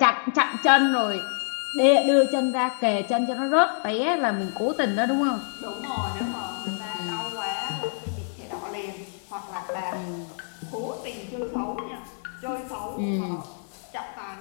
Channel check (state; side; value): silent; right; digital silence